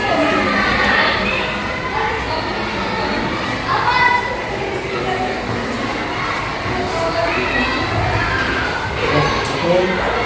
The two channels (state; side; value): identical; both; correlation 1.00